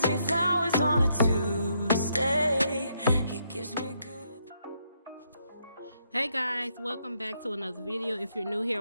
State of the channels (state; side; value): inverted; both; correlation -0.75